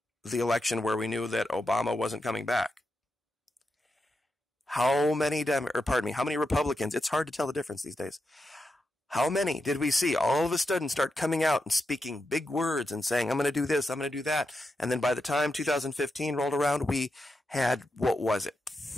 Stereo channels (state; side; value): normal; both; correlation 0.87